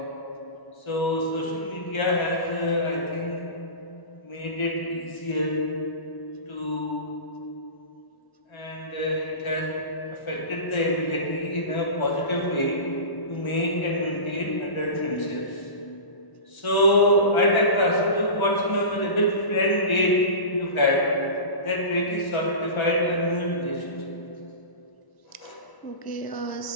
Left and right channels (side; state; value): right; late; 1.0 ms